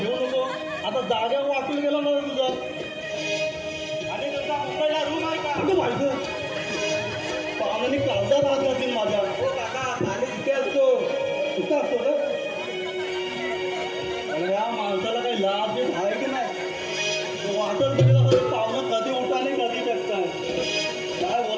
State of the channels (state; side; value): identical; both; correlation 1.00